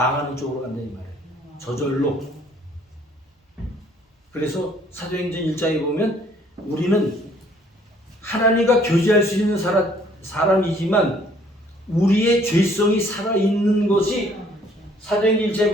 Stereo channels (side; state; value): both; normal; correlation 0.61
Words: 쪽으로 간다 이 말이에요. 저절로. 그래서 사도행전 1장에 보면 우리는 하나님과 교제할 수 있는 사람이지만 우리의 죄성이 살아있는 것이 사도행전 1장에